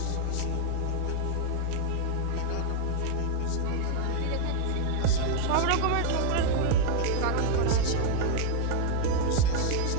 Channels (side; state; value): both; different; correlation 0.00